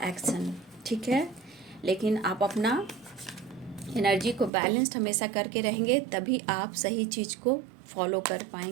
एक्शन। ठीक है, लेकिन आप अपना एनर्जी को बैलेंस्ड हमेशा करके रहेंगे, तभी आप सही चीज़ को फॉलो कर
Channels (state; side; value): drops out; left; at 4.5 s